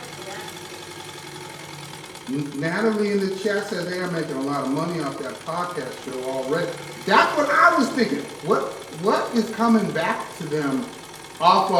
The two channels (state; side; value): identical; both; correlation 1.00